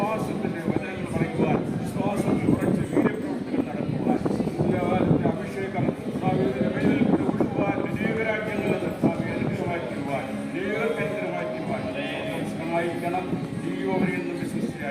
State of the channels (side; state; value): both; identical; correlation 1.00